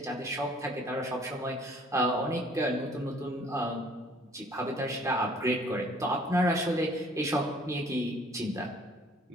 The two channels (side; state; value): both; normal; correlation 0.56